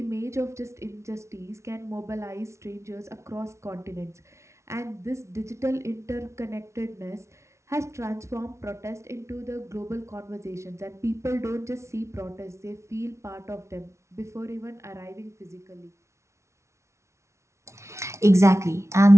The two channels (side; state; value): left; late; 0.13 ms